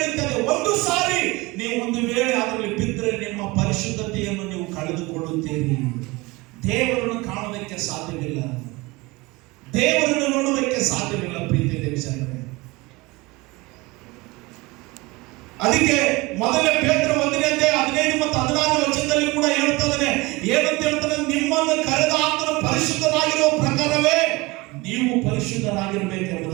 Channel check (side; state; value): left; quieter; 23.3 dB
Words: ಒಂದು ಸಾರಿ ನೀವು ಒಂದು ವೇಳೆ ಅದರಲ್ಲಿ ಬಿದ್ದರೆ ನಿಮ್ಮ ಪರಿಶುದ್ಧತೆಯನ್ನು ನೀವು ಕಳೆದುಕೊಳ್ಳುತ್ತೀರಿ. ದೇವರನ್ನು ಕಾಣುವುದಕ್ಕೆ ಸಾಧ್ಯವಿಲ್ಲ, ದೇವರನ್ನು ನೋಡುವುದಕ್ಕೆ ಸಾಧ್ಯವಿಲ್ಲ. ಪ್ರೀತಿ ದೇವಜನರೇ, ಅದಕ್ಕೆ ಮೊದಲೇ ಪೇತ್ರ 1ನೇ ಅಧ್ಯಾಯ 15 ಮತ್ತು 16 ವಚನದಲ್ಲಿ ಕೂಡ ಹೇಳ್ತಾನೆ. ಏನಂತ ಹೇಳ್ತಾನೆ? ನಿಮ್ಮನ್ನು ಕರೆದ ಆತನ ಪರಿಶುದ್ಧರಾಗಿರುವ ಪ್ರಕಾರವೇ ನೀವು